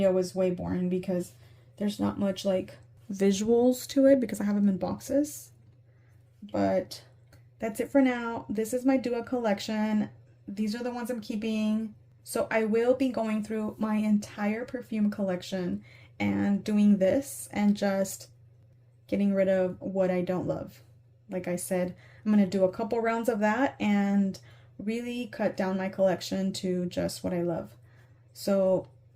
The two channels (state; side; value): identical; both; correlation 1.00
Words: was way boring because there's not much like visuals to it because I have them in boxes. But that's it for now. This is my Dua collection. These are the ones I'm keeping. So I will be going through my entire perfume collection and doing this and just getting rid of what I don't love. Like I said, I'm going to do a couple rounds of that and really cut down my collection to just what I love. So